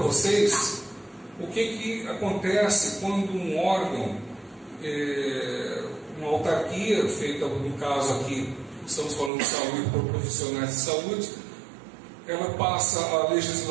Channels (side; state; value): left; drops out; at 9.3 s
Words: o que acontece quando um órgão, uma autarquia feita, no caso aqui, estamos falando de saúde por profissionais de saúde, ela passa a